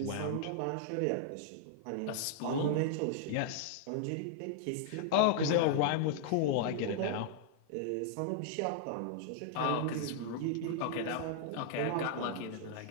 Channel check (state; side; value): different; both; correlation -0.01